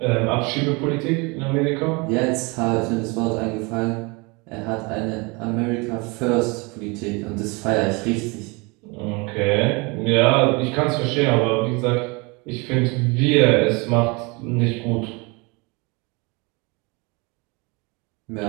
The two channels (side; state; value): left; quieter; 28.2 dB